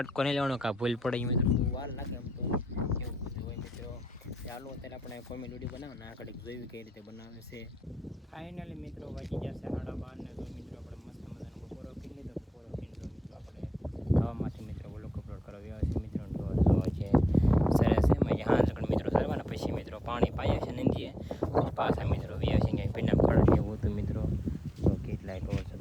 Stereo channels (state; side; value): normal; both; correlation 0.88